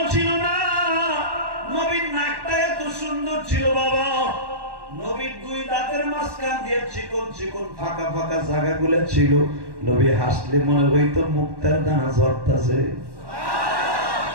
ছিল না। নবীর নাকটা এত সুন্দর ছিল বাবা। নবীর দুই দাঁতের মাঝখান দিয়ে চিকন চিকন ফাঁকা ফাঁকা জায়গাগুলো ছিল। নবী হাসলে মনে হইতো মুক্তার দানা ঝরতাছে।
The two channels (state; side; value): late; left; 1.1 ms